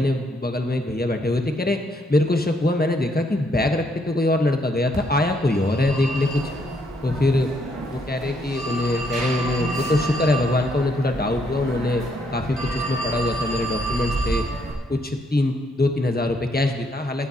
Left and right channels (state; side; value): normal; both; correlation 0.72